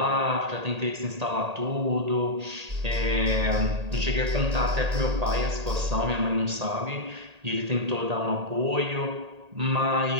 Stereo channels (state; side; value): late; left; 1.8 ms